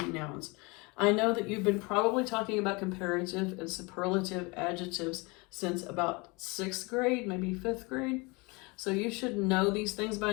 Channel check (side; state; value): right; quieter; 27.2 dB